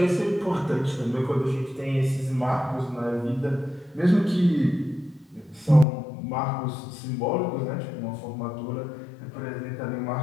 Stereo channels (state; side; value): drops out; right; at 5.9 s